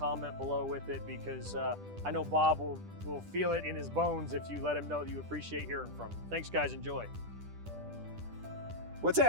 below with it because I know Bob will feel it in his bones if you let him know that you appreciate hearing from him. Thanks guys, enjoy. What's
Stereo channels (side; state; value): left; late; 10 ms